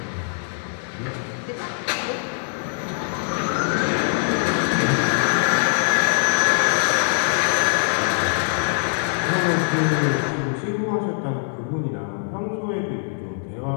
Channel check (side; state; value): right; silent; digital silence